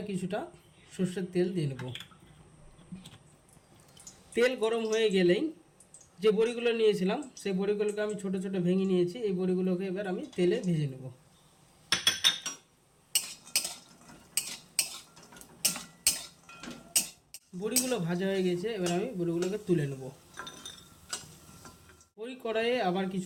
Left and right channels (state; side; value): identical; both; correlation 1.00